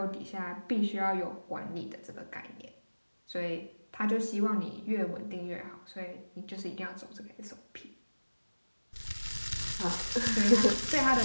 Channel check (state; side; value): inverted; both; correlation -1.00